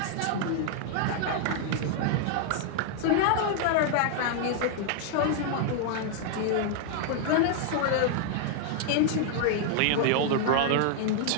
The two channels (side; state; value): both; different; correlation 0.00